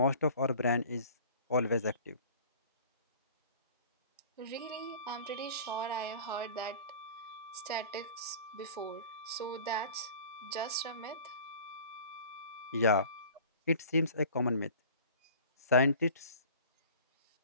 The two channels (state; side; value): inverted; both; correlation -0.43